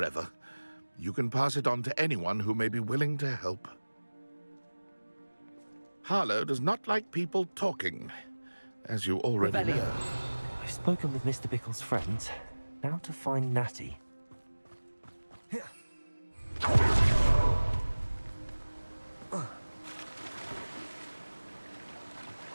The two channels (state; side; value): inverted; both; correlation -1.00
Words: You can pass it on to anyone who may be willing to help. Harlow does not like people talking, as you already know. I've spoken with Mr. Bickle's friends. Now to find Natty.